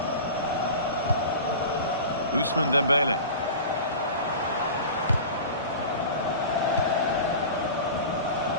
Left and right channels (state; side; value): inverted; both; correlation -0.35